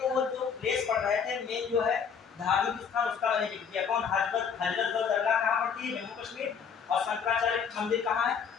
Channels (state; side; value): quieter; right; 6.7 dB